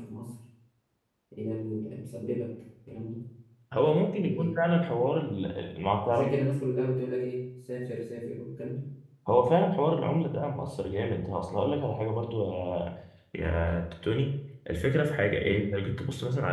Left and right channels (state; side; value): identical; both; correlation 1.00